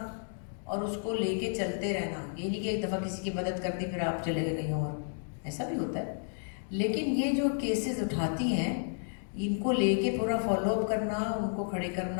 और उसको लेके चलते रहना, ये नहीं कि एक दफ़ा किसी की मदद कर दी फिर आप चले गए कहीं और, ऐसा भी होता है। लेकिन ये जो केसेस उठाती हैं इनको लेके पूरा फॉलो अप करना, उनको खड़े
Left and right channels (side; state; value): right; silent; digital silence